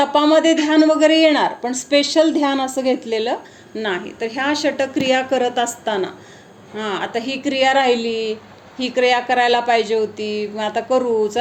ध्यान वगैरे येणार, पण स्पेशल ध्यान असं घेतलेलं नाही. तर ह्या षटक्रिया करत असताना आता ही क्रिया राहिली, ही क्रिया करायला पाहिजे होती, मग आता करू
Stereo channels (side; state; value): both; identical; correlation 1.00